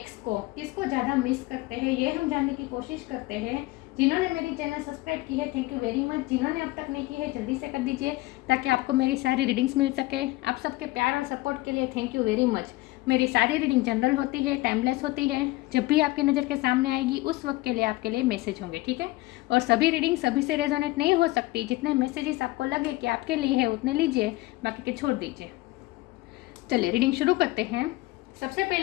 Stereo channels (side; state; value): right; quieter; 19.7 dB